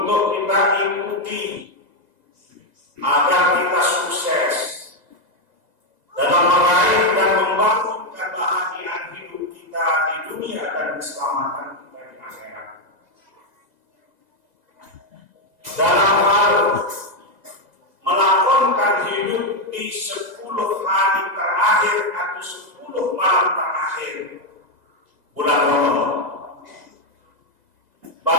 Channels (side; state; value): left; late; 2.0 ms